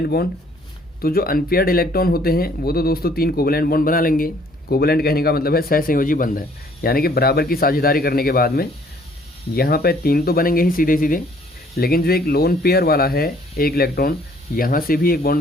बॉन्ड। तो जो अनपेयर्ड इलेक्ट्रॉन होते हैं वो तो दोस्तों 3 कोवेलेंट बॉन्ड बना लेंगे। कोवेलेंट कहने का मतलब है सहसंयोजी बंध है, यानी कि बराबर की साझेदारी करने के बाद में यहाँ पे 3 तो बनेंगे ही सीधे सीधे। लेकिन जो एक लोन पेयर वाला है एक इलेक्ट्रॉन, यहाँ से भी एक बॉन्ड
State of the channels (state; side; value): normal; both; correlation 0.60